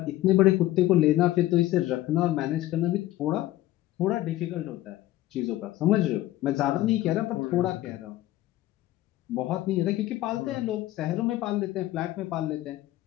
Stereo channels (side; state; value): right; quieter; 15.5 dB